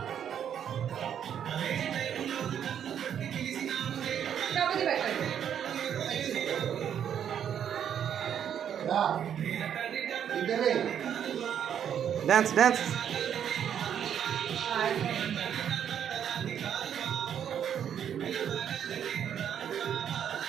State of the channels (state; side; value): quieter; left; 9.0 dB